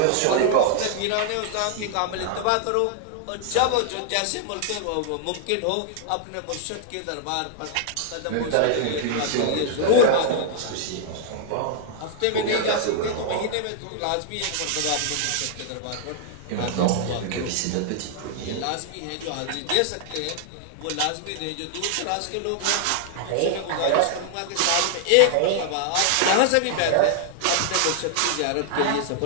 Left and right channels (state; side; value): different; both; correlation -0.01